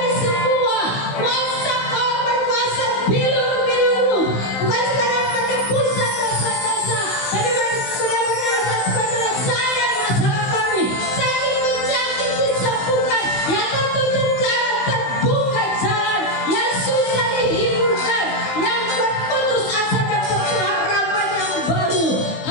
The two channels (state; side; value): late; right; 16 ms